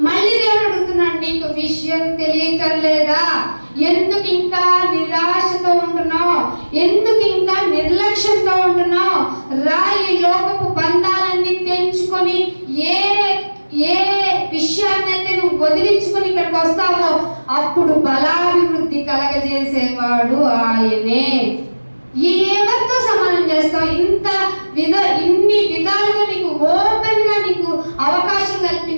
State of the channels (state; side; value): inverted; both; correlation -1.00